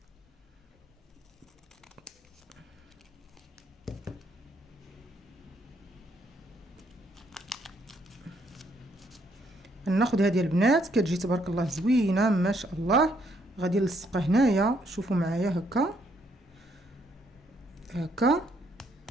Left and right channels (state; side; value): normal; both; correlation 0.71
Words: ناخذ هذه البنات كتجي تبارك الله زوينه ما شاء الله. غادي نلصقها هنايا شوفوا معايا هكا هكا